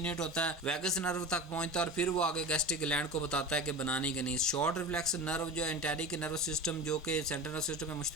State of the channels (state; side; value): normal; both; correlation 0.30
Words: होता है, वेगस नर्व तक पहुंचता है और फिर वो आगे गैस्ट्रिक ग्लैंड को बताता है कि बनाने के नहीं। शॉर्ट रिफ्लेक्स नर्व जो इंटेरिक नर्वस सिस्टम जो कि सेंट्रल नर्वस सिस्टम में